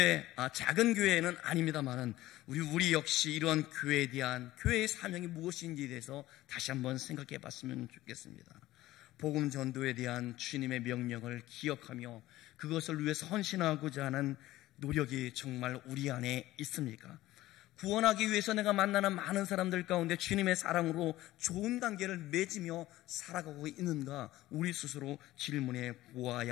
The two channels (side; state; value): right; quieter; 16.2 dB